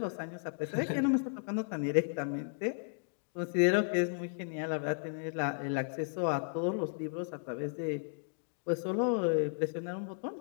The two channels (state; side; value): silent; right; digital silence